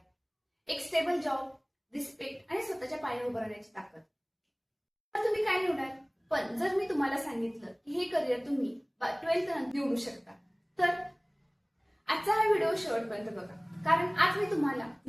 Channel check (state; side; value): identical; both; correlation 1.00